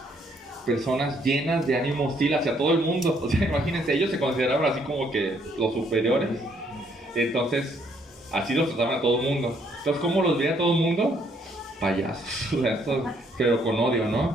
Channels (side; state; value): both; normal; correlation 0.68